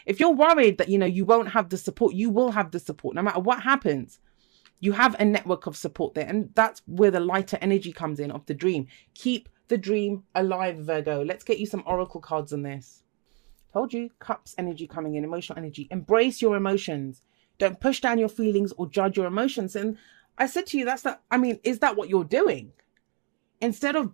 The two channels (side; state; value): left; quieter; 31.9 dB